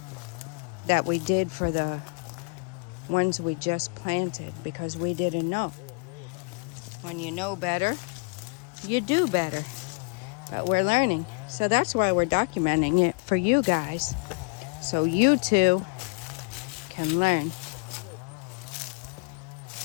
did for the ones we just planted because we didn't know. When you know better, you do better. But we're learning. So that's why we're documenting it for you guys. So you too can learn.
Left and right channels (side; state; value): right; quieter; 33.4 dB